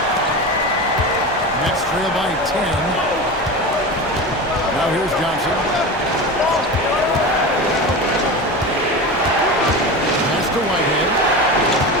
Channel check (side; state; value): both; normal; correlation 0.26